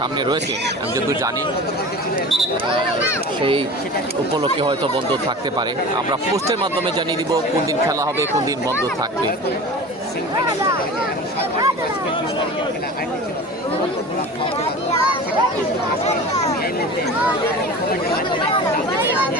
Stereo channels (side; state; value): both; normal; correlation 0.35